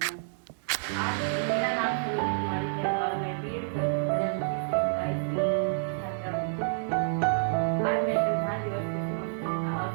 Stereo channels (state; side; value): silent; left; 57 dB below the other